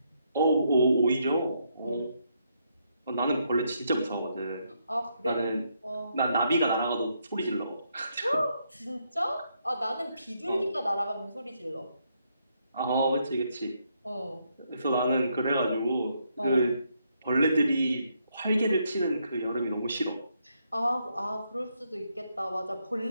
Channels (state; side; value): inverted; both; correlation -0.76